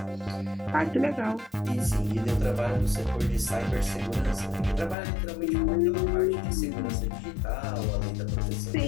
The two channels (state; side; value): drops out; right; at 5.0 s